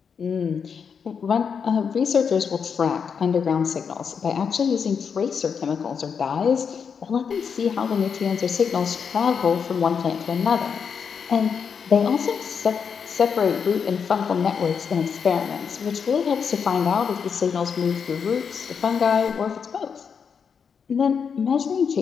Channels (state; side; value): quieter; right; 6.5 dB